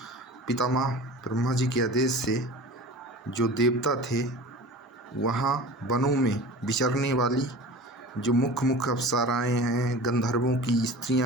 पितामह ब्रह्मा जी के आदेश से जो देवता थे, वहाँ वनों में विचरने वाली जो मुख्य अप्सराएँ हैं, गंधर्वों की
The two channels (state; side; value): normal; both; correlation 0.37